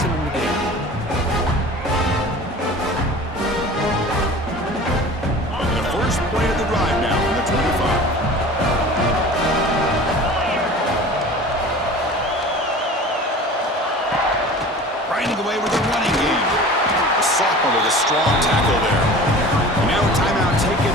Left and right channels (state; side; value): normal; both; correlation 0.40